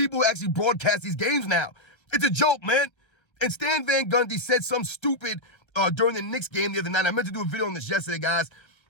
who actually broadcast these games now. It's a joke, man. And Stan Van Gundy said something stupid during the Knicks game the other night. I meant to do a video on this yesterday, guys.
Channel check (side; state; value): right; late; 1.4 ms